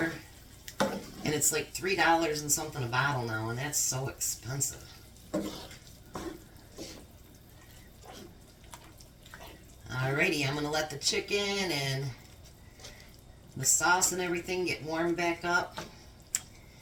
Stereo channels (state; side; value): identical; both; correlation 1.00